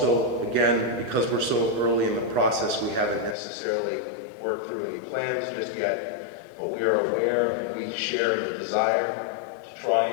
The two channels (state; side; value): drops out; right; at 3.4 s